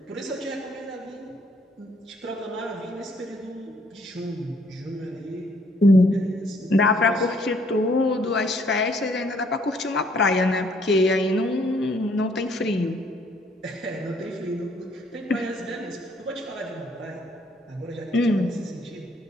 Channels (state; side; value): normal; both; correlation 0.65